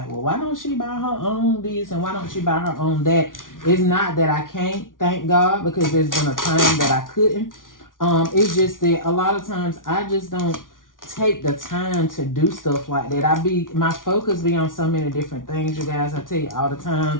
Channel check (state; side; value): late; right; 0.89 ms